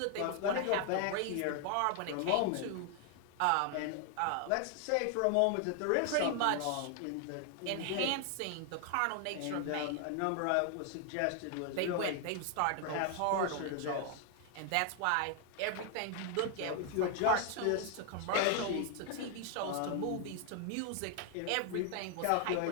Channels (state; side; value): different; both; correlation 0.00